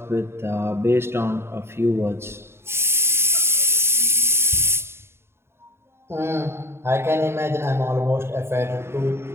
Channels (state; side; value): late; left; 0.12 ms